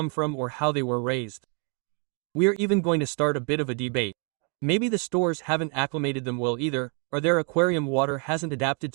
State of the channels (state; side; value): quieter; left; 37.9 dB